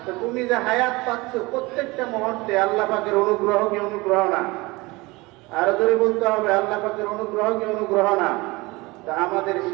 তো তুমি যে হায়াত পাচ্ছ প্রত্যেকটা মুহূর্তে আল্লাহ পাকের অনুগ্রহ কি অনুগ্রহ না? আরো জোরে বলতে হবে, আল্লাহ পাকের অনুগ্রহ কি অনুগ্রহ না? তা আমাদের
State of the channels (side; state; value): left; quieter; 23.0 dB